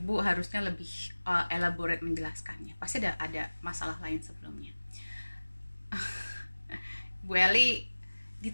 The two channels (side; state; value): both; inverted; correlation -1.00